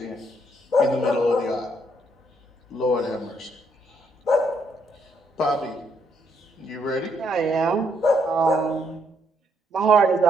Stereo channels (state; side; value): normal; both; correlation 0.73